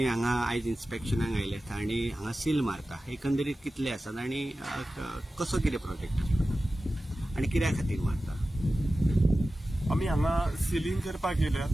हांगा आयज इन्स्पेक्शनाक आयल्यात आणि हांगा सील मारता एकंदरीत कितले आसात आणि कसो कितें प्रोजेक्ट आसता आणि कित्या खातीर मारता? आमी हांगा सिलींग करपाक येयल्यात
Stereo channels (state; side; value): normal; both; correlation 0.95